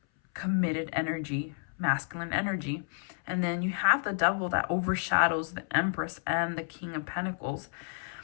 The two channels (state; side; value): silent; right; 57 dB below the other